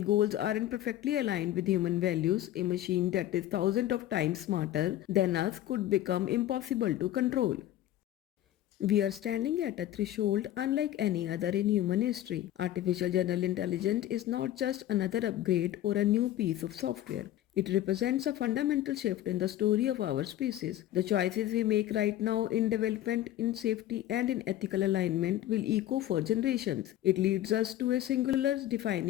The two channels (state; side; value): quieter; right; 13.2 dB